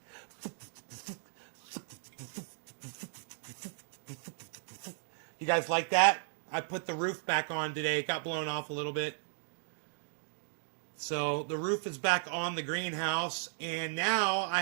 You guys like that? I put the roof back on today. It got blown off a little bit. So the roof is back on the greenhouse, and now I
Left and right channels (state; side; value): silent; left; digital silence